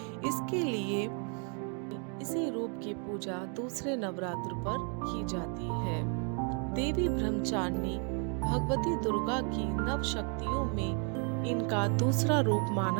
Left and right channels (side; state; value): left; quieter; 38.8 dB